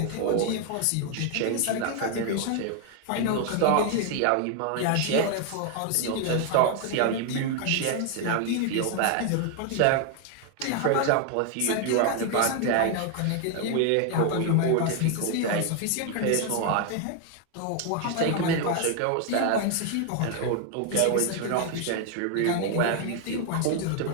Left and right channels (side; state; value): both; different; correlation 0.01